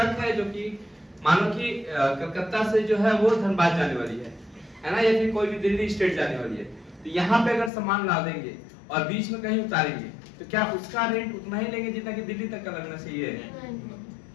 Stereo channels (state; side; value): drops out; right; at 7.7 s